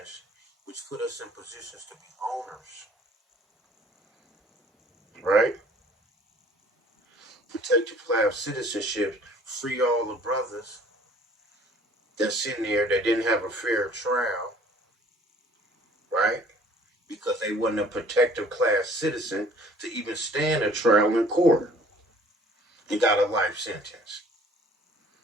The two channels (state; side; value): normal; both; correlation 0.54